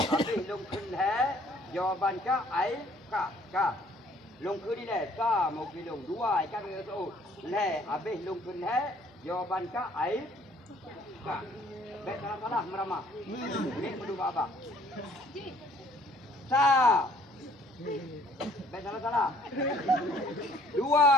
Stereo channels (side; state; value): both; normal; correlation 0.59